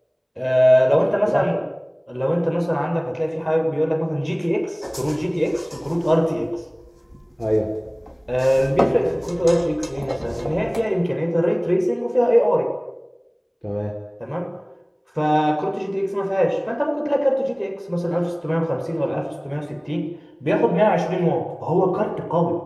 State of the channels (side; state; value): both; identical; correlation 1.00